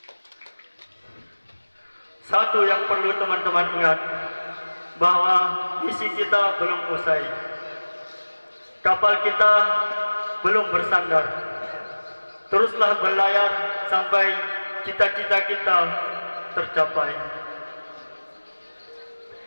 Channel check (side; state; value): both; inverted; correlation -1.00